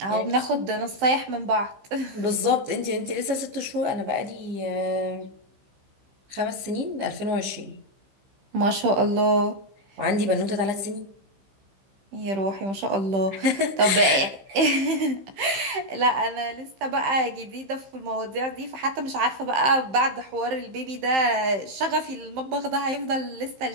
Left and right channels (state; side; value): late; left; 15 ms